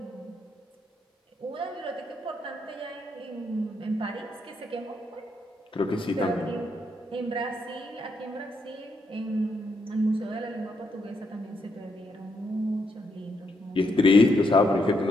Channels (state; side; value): normal; both; correlation 0.78